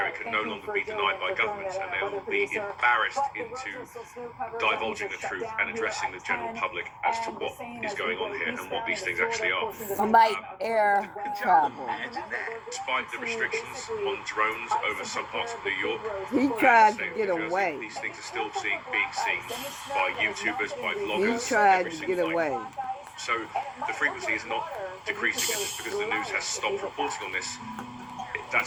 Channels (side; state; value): both; identical; correlation 1.00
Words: it can no longer be denied by governments, and they will be embarrassed into divulging the truth and addressing the general public as to what is going on here and what these things actually are. Like air travel. Despite the restrictions on drones over some parts of New York, He tried to state of get New Jersey, away. these things are still being seen by YouTubers, by He vloggers. tried every to single get night. away. So the frequency is not decreasing just because the news has stopped reporting on this.